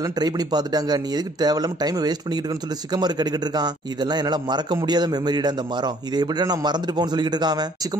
ட்ரை பண்ணி பார்த்துட்டாங்க, நீ எதுக்கு தேவையில்லாம டைம் வேஸ்ட் பண்ணிக்கிட்டு இருக்கன்னு சொல்லி சிக்கமாரு கேட்டுக்கிட்டு இருக்கான். இதெல்லாம் என்னால மறக்க முடியாத மெமரிடா இந்த மரம், இதை எப்படி நான் மறந்துட்டு போன்னு சொல்லிட்டு இருக்கான்.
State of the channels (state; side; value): normal; both; correlation 0.60